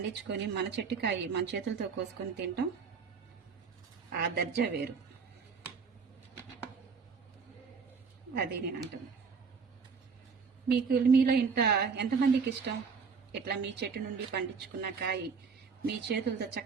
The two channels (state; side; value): quieter; left; 5.5 dB